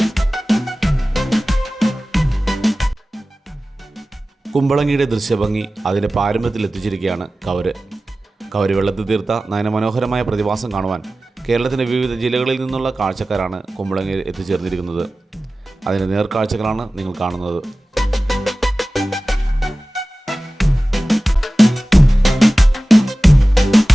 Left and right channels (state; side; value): normal; both; correlation 0.96